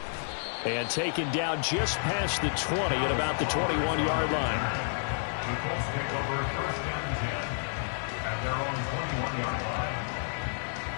And taken down just past the 20 at about the 21-yard line. The Colts take over first down and 10 at their own 21-yard line.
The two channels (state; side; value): silent; right; digital silence